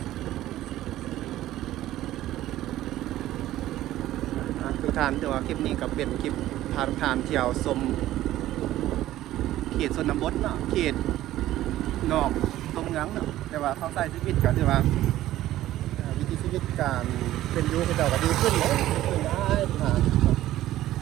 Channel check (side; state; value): left; quieter; 14.4 dB